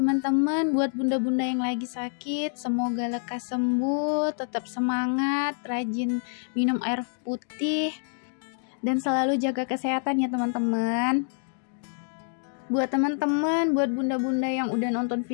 teman-teman, buat bunda-bunda yang lagi sakit, semoga lekas sembuh, tetap semangat, rajin minum air putih dan selalu jaga kesehatan ya teman-teman. Buat teman-teman, buat bunda-bunda yang udah nonton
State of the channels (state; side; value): silent; right; digital silence